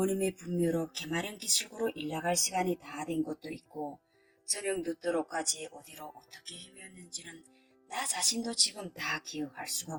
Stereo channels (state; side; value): identical; both; correlation 1.00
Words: 분묘로 개마련 기술구로 일나갈 시간이 다 된 것도 있고 저녁 늦도록까지 어디로 어떻게 헤매었는지는 나 자신도 지금 다 기억할 수가